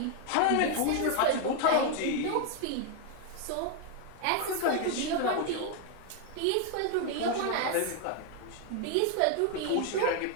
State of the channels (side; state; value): both; different; correlation 0.01